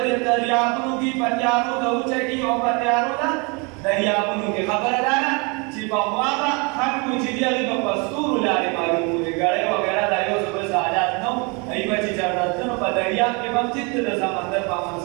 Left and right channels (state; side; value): quieter; left; 30.8 dB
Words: دریابونو کې په تیارو د اوچه کې او په تیارو د دریابونو کې خبره ده چې په هوا به خلکو چې دي هغې په ستورو لارې معلوموي ګړۍ وغیره دا یو څه بل حالات نه وو هغوی به چې چېرته تلو په دریا دریاب کې هم چې د سمندر په منځ